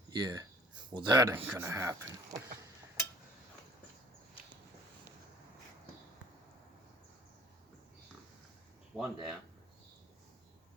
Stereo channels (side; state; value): both; normal; correlation 0.54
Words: Yeah. Well, that ain't gonna happen. One down.